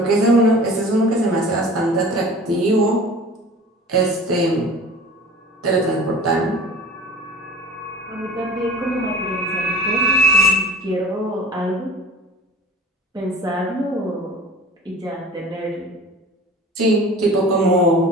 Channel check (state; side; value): normal; both; correlation 0.41